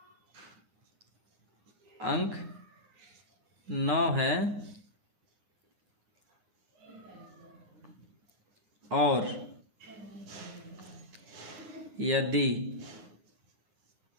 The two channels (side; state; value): left; late; 9.7 ms